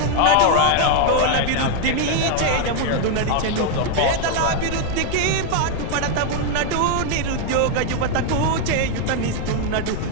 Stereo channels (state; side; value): different; both; correlation 0.01